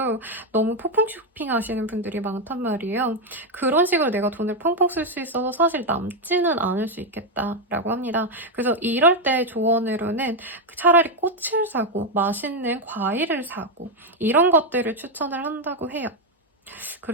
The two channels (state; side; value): normal; both; correlation 0.04